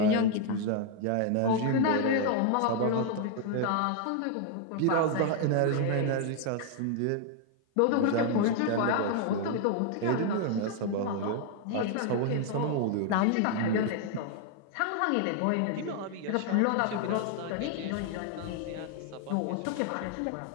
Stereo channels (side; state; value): both; different; correlation 0.00